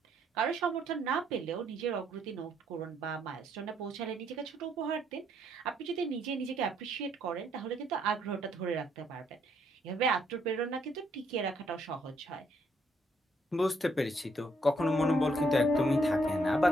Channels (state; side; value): normal; both; correlation 0.71